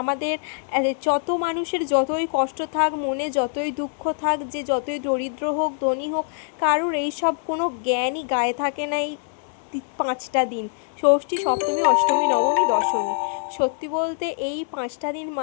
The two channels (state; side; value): silent; right; digital silence